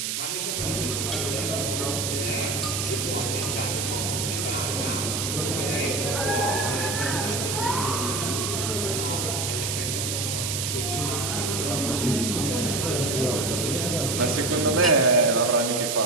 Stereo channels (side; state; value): right; noise; hiss, 1 dB below the sound